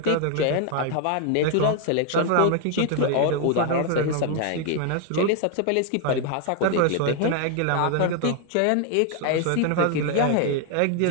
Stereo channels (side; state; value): both; different; correlation 0.00